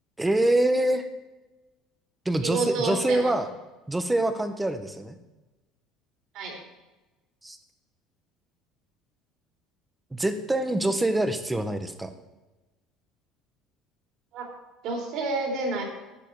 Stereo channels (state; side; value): normal; both; correlation 0.83